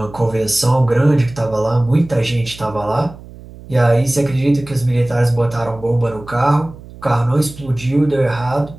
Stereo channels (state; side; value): noise; right; hum, 18 dB below the sound